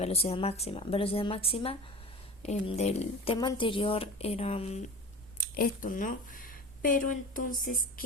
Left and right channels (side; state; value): both; normal; correlation 0.34